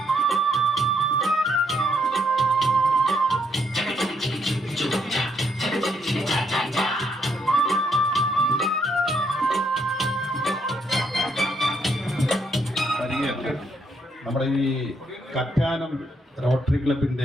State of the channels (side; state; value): both; normal; correlation 0.74